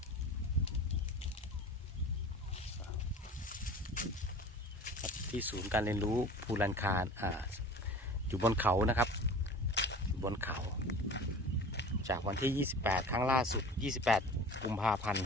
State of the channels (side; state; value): both; normal; correlation 0.39